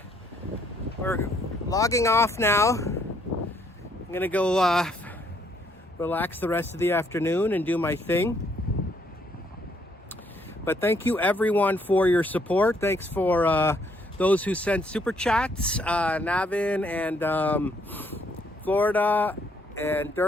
logging off now. I'm gonna go relax the rest of the afternoon and do my thing. But thank you everyone for your support. Thanks for those who sent super chats. Navin and Florida, and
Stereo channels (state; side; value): normal; both; correlation 0.69